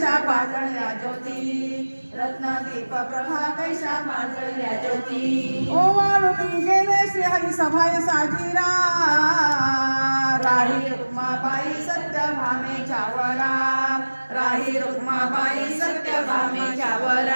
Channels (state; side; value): inverted; both; correlation -1.00